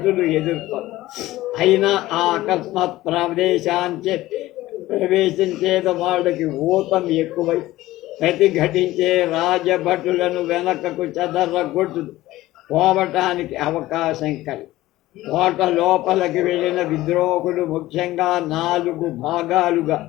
ఎదుర్కొన్నారు. అయినా ఆ అకస్మాత్ ప్రవేశించేది వాళ్ళకి ఊతం ఎక్కువై ప్రతిఘటించే రాజభటులను వెనకకు చెదరగొట్టు పోవటానికి అవకాశం కలిగి కోట లోపలికి వెళ్ళిన విద్రోహులు ముఖ్యంగా 4 భాగాలుగా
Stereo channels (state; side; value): quieter; right; 16.7 dB